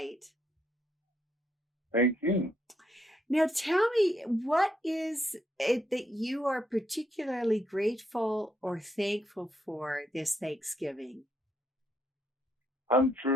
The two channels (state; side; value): normal; both; correlation 0.75